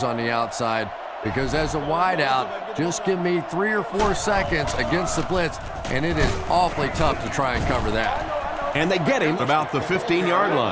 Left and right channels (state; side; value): identical; both; correlation 1.00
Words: on the outside, because as a wideout, just give me 3 or 4 seconds against the blitz, and it is awfully tough to try and cover that. And they get him about the 15-yard